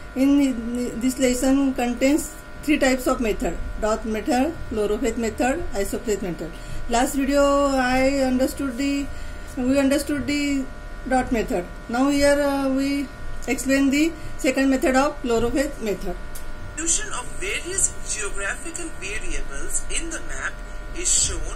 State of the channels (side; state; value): both; identical; correlation 1.00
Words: In this lesson contains three types of method: dot method, chlorophet method, isopleth method. Last video we understood the dot method. Now here we explain the second method of chlorophet method. Distribution of various geographical variables in the map is